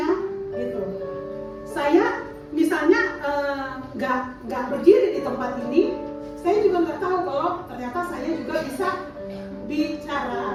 ya. Gitu. Saya misalnya juga bisa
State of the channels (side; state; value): both; identical; correlation 1.00